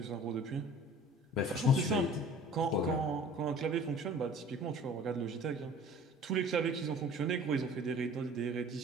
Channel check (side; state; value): both; normal; correlation 0.46